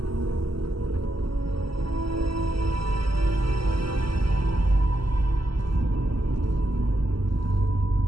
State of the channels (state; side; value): late; left; 0.74 ms